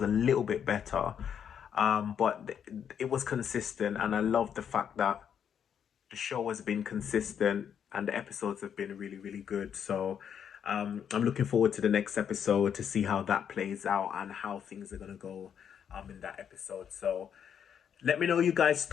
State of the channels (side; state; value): right; quieter; 8.3 dB